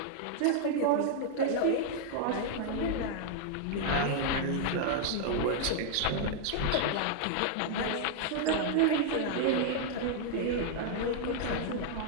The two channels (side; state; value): both; different; correlation -0.01